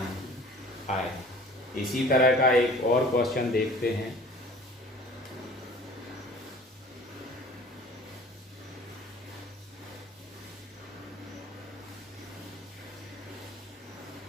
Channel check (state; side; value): normal; both; correlation 0.47